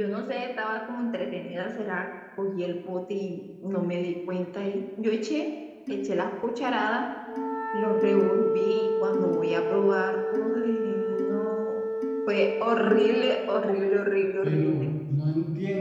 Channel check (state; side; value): identical; both; correlation 1.00